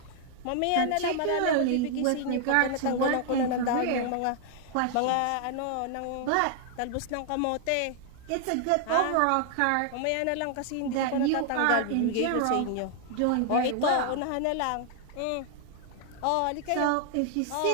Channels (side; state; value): both; different; correlation 0.00